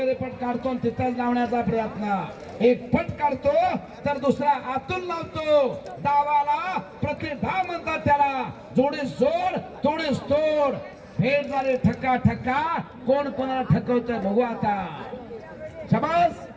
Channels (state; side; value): identical; both; correlation 1.00